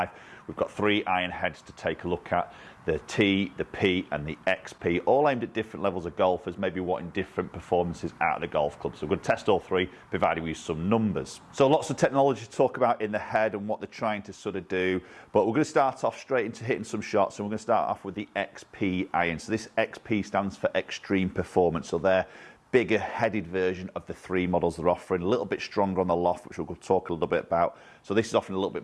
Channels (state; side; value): identical; both; correlation 1.00